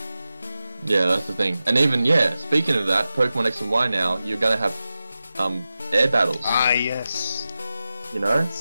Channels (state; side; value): inverted; both; correlation -0.94